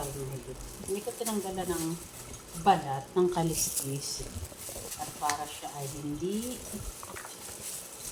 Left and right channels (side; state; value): both; identical; correlation 1.00